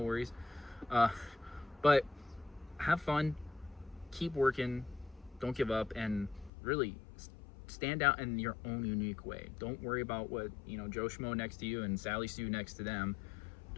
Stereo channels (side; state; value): right; drops out; at 6.5 s